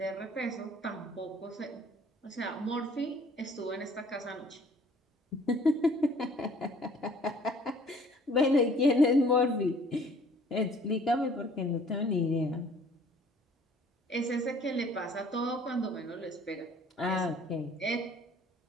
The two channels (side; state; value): both; normal; correlation 0.55